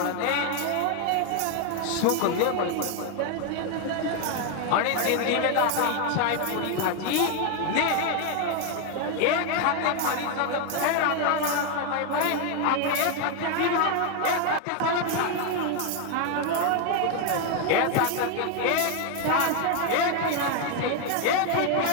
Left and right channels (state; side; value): different; both; correlation 0.01